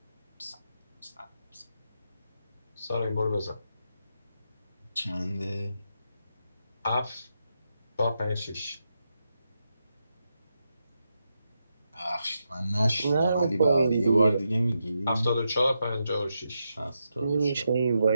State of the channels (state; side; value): inverted; both; correlation -0.85